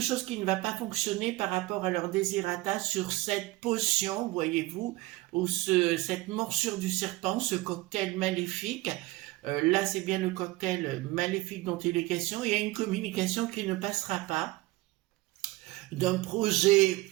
qui ne va pas fonctionner par rapport à leur désirata sur cette potion, voyez-vous, ou cette morsure du serpent, ce cocktail maléfique. Là, c'est bien le cocktail maléfique dont il est question. Il y a une communication qui ne passera pas d'un projet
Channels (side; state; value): left; quieter; 20.1 dB